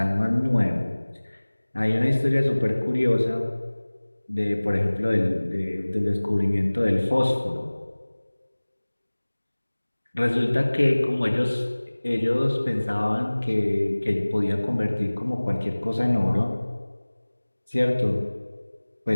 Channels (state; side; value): inverted; both; correlation -1.00